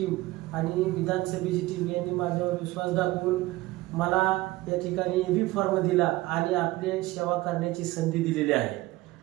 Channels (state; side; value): quieter; left; 18.9 dB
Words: आणि विधानसभेची टीम यांनी माझ्यावर विश्वास दाखवून मला या ठिकाणी एबी फॉर्म दिला आणि आपले सेवा करण्याची संधी दिलेली आहे।